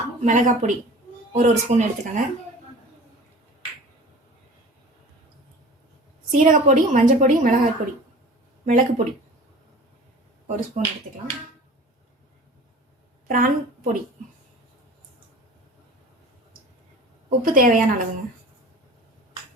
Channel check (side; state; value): both; normal; correlation 0.41